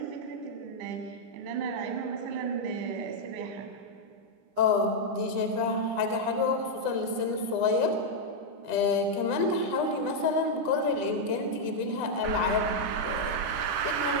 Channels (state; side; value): late; left; 9.9 ms